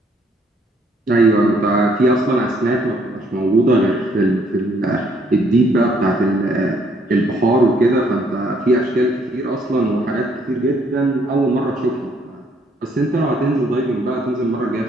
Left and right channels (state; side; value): normal; both; correlation 0.67